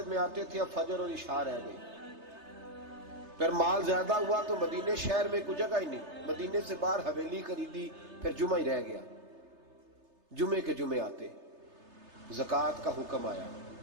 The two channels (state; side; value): late; left; 3.3 ms